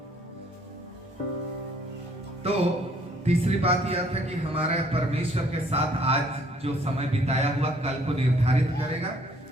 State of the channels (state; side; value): normal; both; correlation 0.62